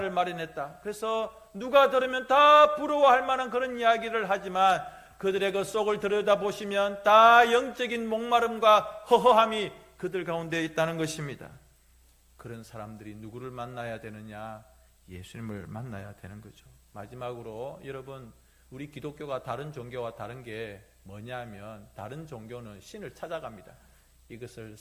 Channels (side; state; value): both; identical; correlation 1.00